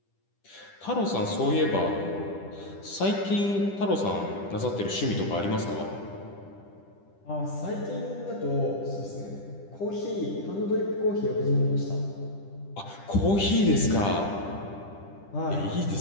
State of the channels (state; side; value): late; right; 10 ms